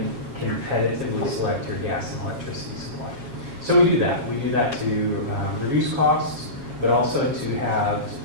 competitively select your gas and electricity supply. So we do that. We do that to reduce costs, but also to have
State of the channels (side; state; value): left; late; 7.4 ms